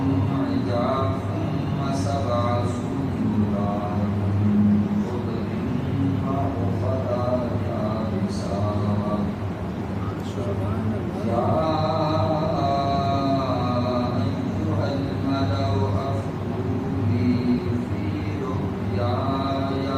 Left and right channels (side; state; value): both; identical; correlation 1.00